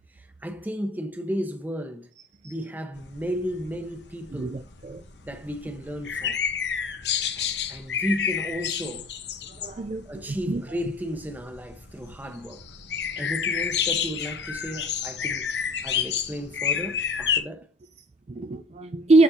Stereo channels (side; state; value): both; normal; correlation 0.47